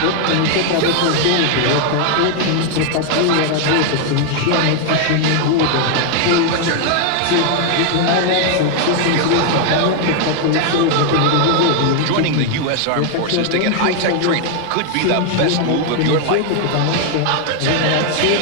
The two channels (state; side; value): different; both; correlation 0.00